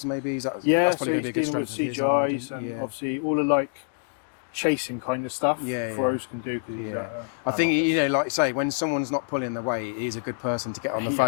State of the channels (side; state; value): right; silent; digital silence